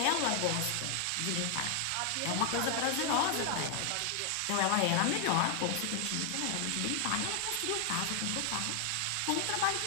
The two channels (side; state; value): both; different; correlation 0.00